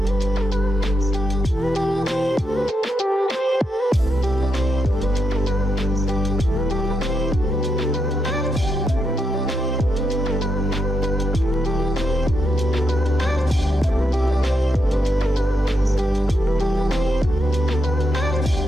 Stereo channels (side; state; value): both; normal; correlation 0.83